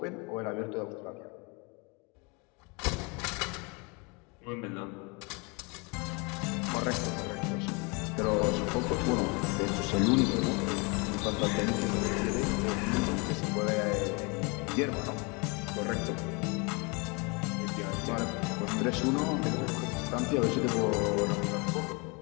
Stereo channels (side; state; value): right; quieter; 30.2 dB